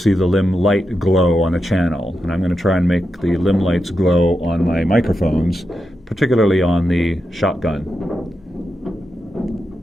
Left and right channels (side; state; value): both; normal; correlation 0.88